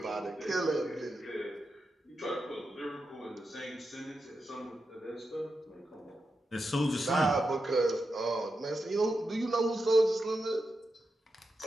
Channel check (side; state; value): both; normal; correlation 0.88